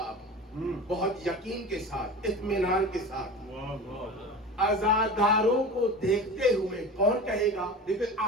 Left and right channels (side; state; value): both; normal; correlation 0.33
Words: اب بہت یقین کے ساتھ، اطمینان کے ساتھ، عزاداروں کو دیکھتے ہوئے کون کہے گا؟ دیکھیں